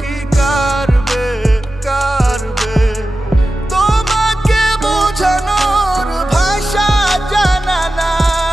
কি কারবে কারবে, তোমাকে বোঝানোর ভাষা জানা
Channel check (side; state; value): both; normal; correlation 0.94